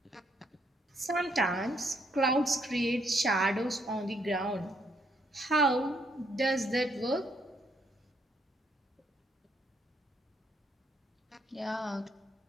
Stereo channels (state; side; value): normal; both; correlation 0.72